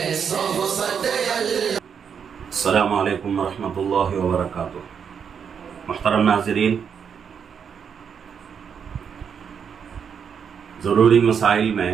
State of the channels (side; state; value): left; quieter; 7.1 dB